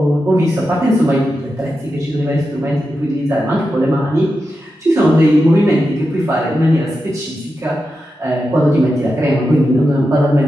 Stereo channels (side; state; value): both; normal; correlation 0.89